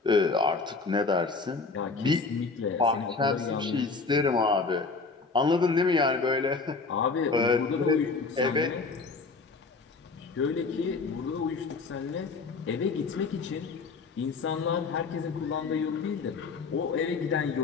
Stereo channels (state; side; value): quieter; right; 4.3 dB